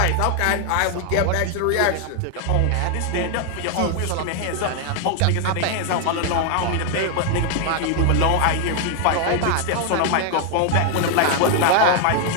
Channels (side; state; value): both; different; correlation 0.00